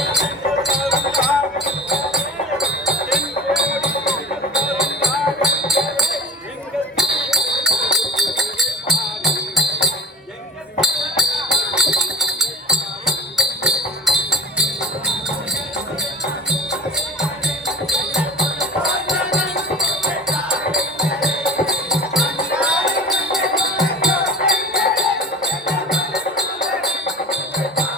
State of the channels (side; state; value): both; normal; correlation 0.38